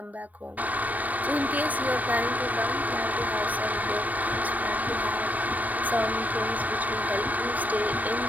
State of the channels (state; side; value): late; left; 0.079 ms